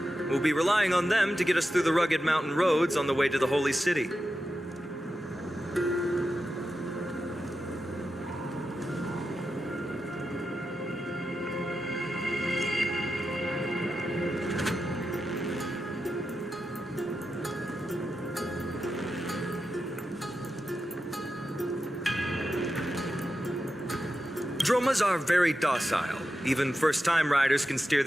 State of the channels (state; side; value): normal; both; correlation 0.90